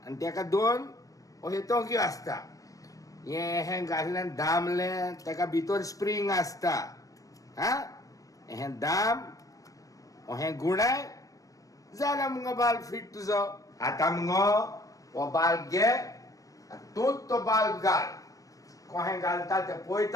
आनी तेका दोन अशे तोंक्यो आसता हें घातलें दामलें तेका भितर स्प्रींग आसता हा हें दाम हें गुणाय जाला मुगो बाल्ब फिट तुजो आतां मुगो हो बाल्ब घे तूंच तो बाल्ब घाल कोहें घालता तें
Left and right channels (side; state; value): right; late; 0.16 ms